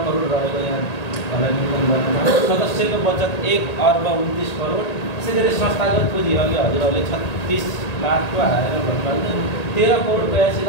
करोड रहेको यहाँलाई निवेदन गर्नु। सदस्यको बचत 1,29 करोड। त्यसै गरी संस्थागत पुँजी अघि हजुरहरूले 36 लाखको हालेर भन्नुभयो,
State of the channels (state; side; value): late; right; 1.8 ms